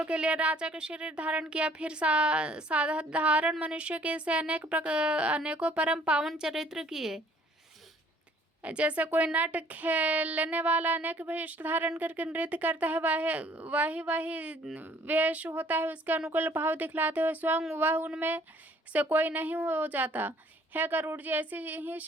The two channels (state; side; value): normal; both; correlation 0.58